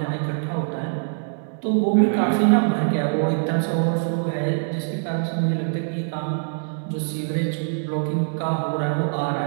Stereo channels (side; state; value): left; silent; digital silence